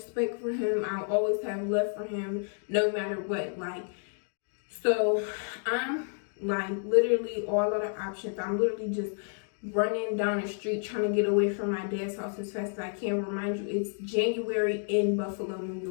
for him. I'll always have love for him, no matter what. Like, so I'm like literally all out of options. I'm literally just running down the street trying to get away from my dad's house as fast as I can. Remind you, it's January in Buffalo, New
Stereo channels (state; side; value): silent; right; 58 dB below the other